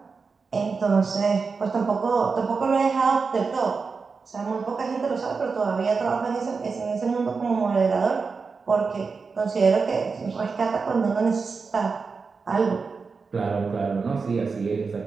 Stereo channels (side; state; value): left; quieter; 4.8 dB